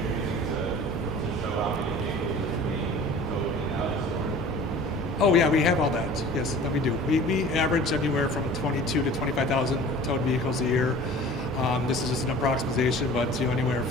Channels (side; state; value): both; normal; correlation 0.44